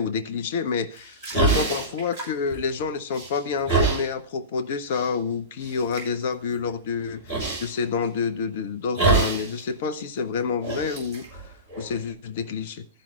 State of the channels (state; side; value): inverted; both; correlation -0.30